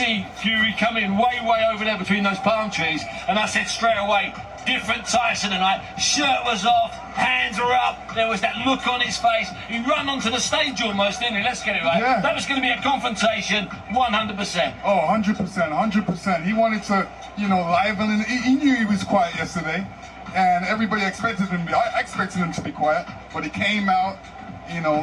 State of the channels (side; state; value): both; identical; correlation 1.00